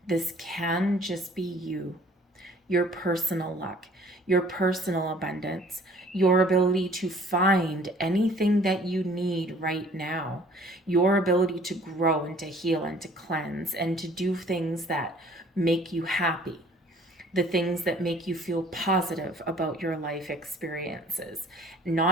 This can just be you, your personal luck, your personal abundance, your ability to find anything that you need right now, your ability to grow and to heal and to cleanse and to do things that make you happy, the things that make you feel positive about your life experiences,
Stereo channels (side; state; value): both; normal; correlation 0.54